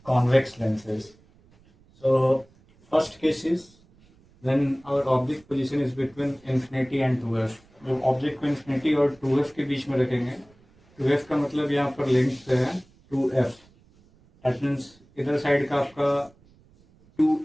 convex lenses. So first case is when our object position is between infinity and 2f. जब ऑब्जेक्ट को इन्फिनिटी और 2f के बीच में रखेंगे, 2f का मतलब यहाँ पर लेंथ है 2f, दैट मीन्स इधर साइड का आपका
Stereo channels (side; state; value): right; noise; rumble, 30 dB below the sound